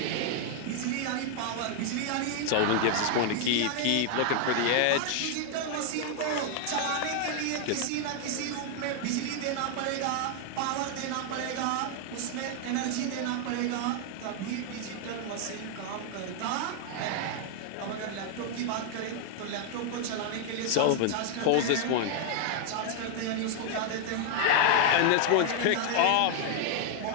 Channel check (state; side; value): different; both; correlation 0.00